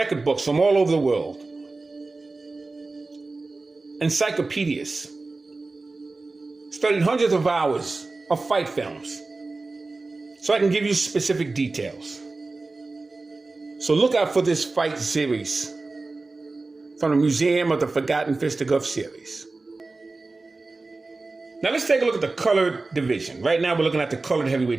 books from all over the world, encyclopedias, studied hundreds of hours of fight films, so I can give you specific details. So look out for this fight series from the Museum of the Forgotten Fisticuffs series. Now let's take a look at the colored division. Right now we're looking at the colored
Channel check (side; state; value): left; quieter; 3.5 dB